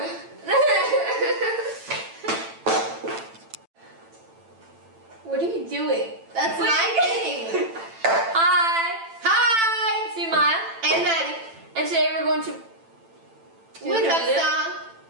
What are you doing? That's my thing. Hi. Hi. It's me, Maya. And Maddie. And today we're going to do What's the up, video. song?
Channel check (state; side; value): late; left; 9.0 ms